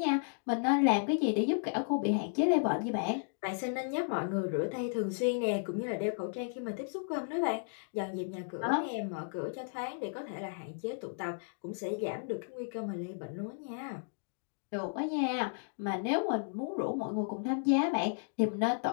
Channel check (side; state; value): right; silent; digital silence